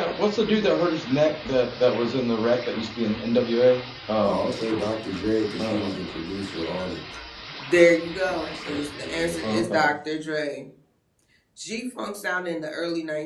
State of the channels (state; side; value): identical; both; correlation 1.00